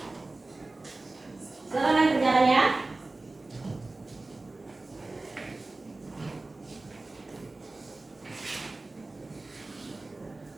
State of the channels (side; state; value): left; quieter; 3.2 dB